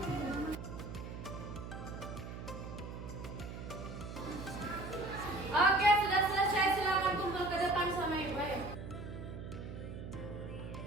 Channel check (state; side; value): noise; right; hum, 9 dB below the sound